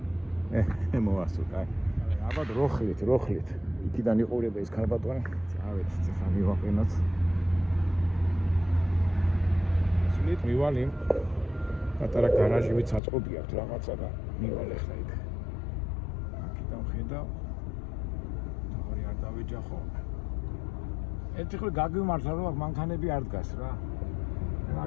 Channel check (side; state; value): right; drops out; at 13.0 s